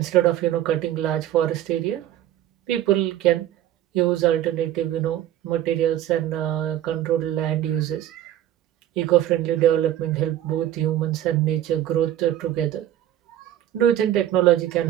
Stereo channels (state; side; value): quieter; left; 12.2 dB